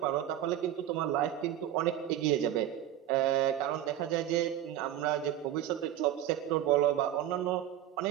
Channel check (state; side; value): quieter; left; 11.7 dB